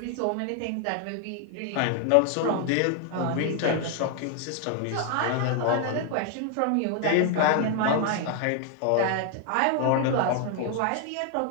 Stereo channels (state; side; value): different; both; correlation 0.00